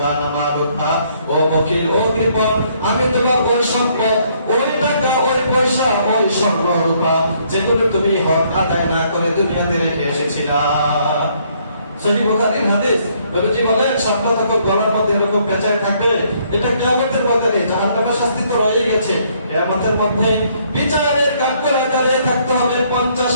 আনা মালুকা, ও বখির, ও কৃপণ, আমি তোমার ওই সম্পদ, ওই টাকা, ওই পয়সা, ওই স্বর্ণ রূপা যেগুলো তুমি হক আদায় না করে দুনিয়াতে রেখে এসেছিলা। সহিহ বুখারীর হাদিস। নবীজি বলেন সাপটা যখন গলার মধ্যে এরকম পেঁচায় থাকবে, এটা কিয়ামতের মধ্যে জাহান্নামের শাস্তি তো রয়ে গেছে, কিয়ামতের মধ্যে বিচারের কাঠগড়ায় দাঁড়িয়ে থাকতে হবে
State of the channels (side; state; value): both; inverted; correlation -0.67